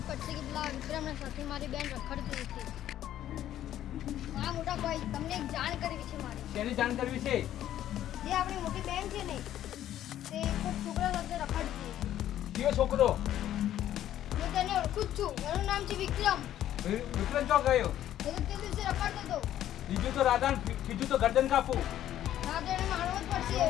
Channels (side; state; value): right; quieter; 12.0 dB